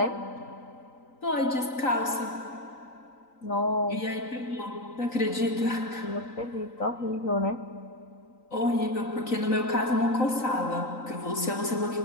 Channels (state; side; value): late; right; 3.9 ms